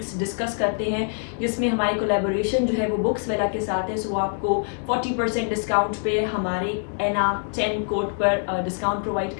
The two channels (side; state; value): right; silent; 62 dB below the other